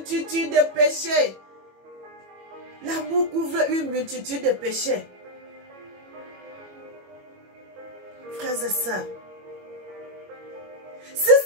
de péchés. L'amour couvre une multitude de péchés. Frères et sœurs, si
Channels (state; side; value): late; left; 21 ms